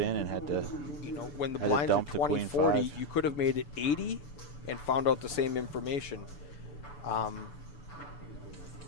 and had to. You know, when the had to blinds are dump the queen 20-40, five. you could have made it 80 and found out the same information,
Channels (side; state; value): right; late; 6.9 ms